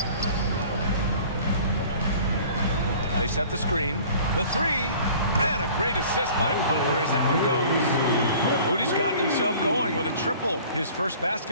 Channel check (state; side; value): inverted; both; correlation -0.48